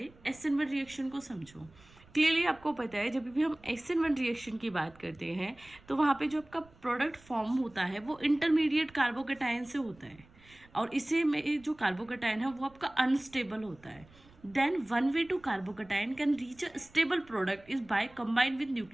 SN1 रिएक्शन को समझो। क्लियरली आपको पता है, जब भी हम SN1 रिएक्शन की बात करते हैं तो वहाँ पे जो आपका प्रोडक्ट फॉर्म होता है वो इंटरमीडिएट कार्बोकेटाइन से होता है, और इसे में जो कार्बोकेटाइन है वो आपका अनस्टेबल होता है। Then one way to carbocation can reach a stable product is by combined with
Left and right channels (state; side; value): noise; right; rumble, 26 dB below the sound